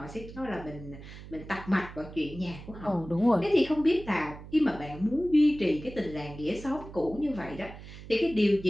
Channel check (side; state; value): right; noise; hum, 15 dB below the sound